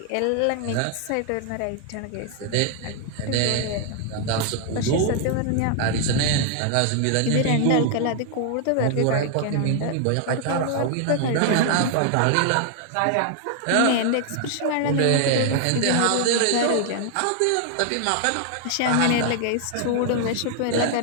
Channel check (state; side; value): different; both; correlation 0.00